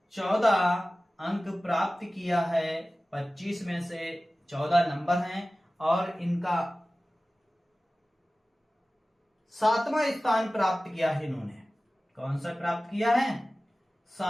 14 अंक प्राप्त किया है 25 में से। 14 नंबर हैं, और इनका 7वां स्थान प्राप्त किया है इन्होंने। कौन सा प्राप्त किया है,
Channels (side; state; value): both; normal; correlation 0.97